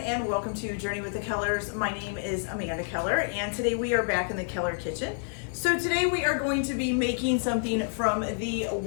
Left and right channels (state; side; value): silent; right; 57 dB below the other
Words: welcome to Journey with the Kellers. My name is Amanda Keller and today we are back in the Keller kitchen. So today we are going to be making something from the